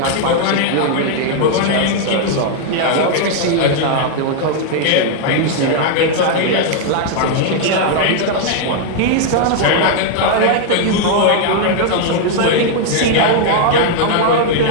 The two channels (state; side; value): different; both; correlation 0.00